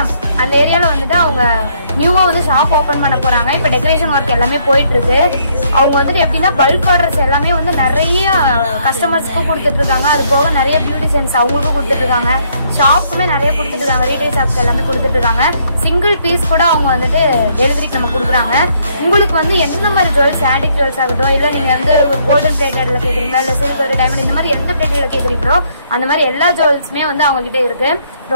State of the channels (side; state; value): both; inverted; correlation -0.69